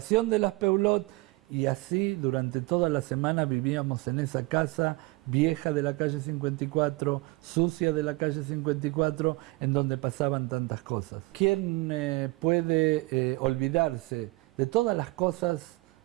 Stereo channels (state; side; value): quieter; left; 23.2 dB